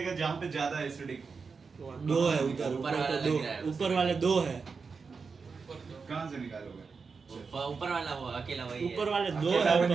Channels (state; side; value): quieter; left; 5.0 dB